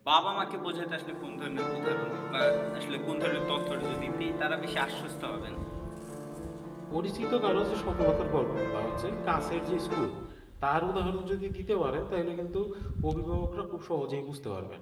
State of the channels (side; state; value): both; identical; correlation 1.00